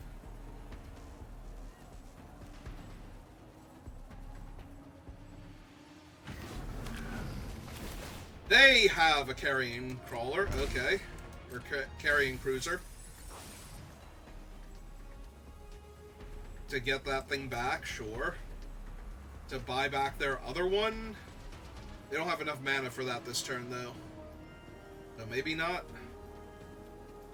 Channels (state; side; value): identical; both; correlation 1.00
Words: They have a carrying crawler, okay. Or carrying cruiser. To get that thing back, sure. To buy back their other one? They don't have enough mana for that this turn, though. So maybe not.